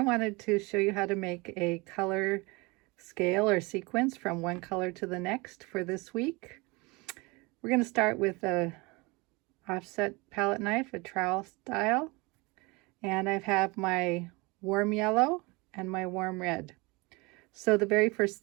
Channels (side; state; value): left; quieter; 25.6 dB